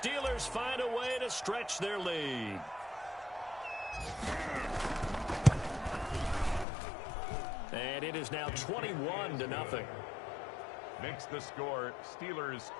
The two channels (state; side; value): drops out; right; at 6.7 s